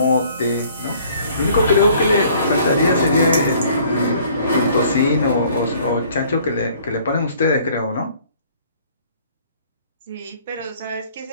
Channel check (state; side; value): inverted; both; correlation -0.57